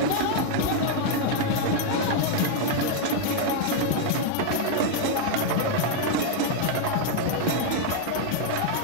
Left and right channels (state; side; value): different; both; correlation 0.00